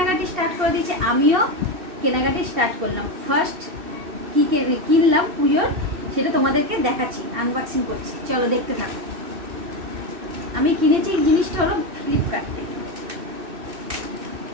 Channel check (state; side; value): late; left; 2.6 ms